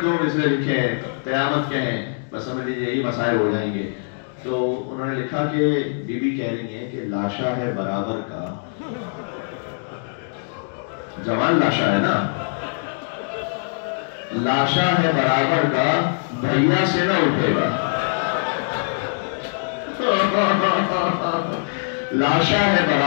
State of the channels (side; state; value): right; silent; digital silence